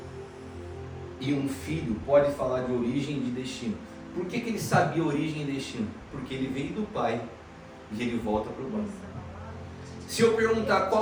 e um filho pode falar de origem e de destino. Por que ele sabia origem e destino? Porque ele veio do pai e ele volta para o pai. Se eu perguntar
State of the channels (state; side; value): identical; both; correlation 1.00